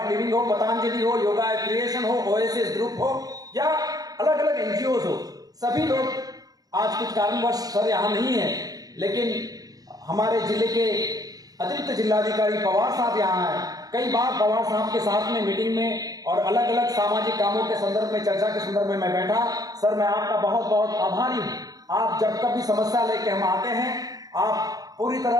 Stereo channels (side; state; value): left; late; 0.18 ms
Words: लिविंग हो, पतंजलि हो, योगा क्रिएशन हो, ओएसिस ग्रुप हो या अलग अलग एनजीओ हो, सभी लोग आज कुछ कारणवश सर यहाँ नहीं है, लेकिन हमारे जिले के अतिरिक्त जिलाधिकारी पवार साहब यहाँ हैं। कई बार पवार साहब के साथ में मीटिंग में और अलग अलग सामाजिक कामों के संदर्भ में, चर्चा के संदर्भ में मैं बैठा। सर मैं आपका बहुत बहुत आभारी हूँ। आप जब कभी समस्या लेके हम आते हैं, आप पूरी